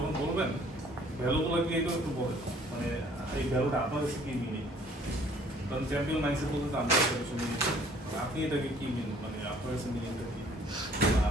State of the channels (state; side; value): normal; both; correlation 0.57